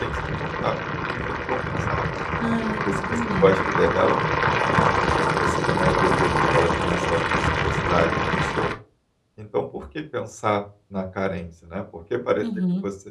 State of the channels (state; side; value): identical; both; correlation 1.00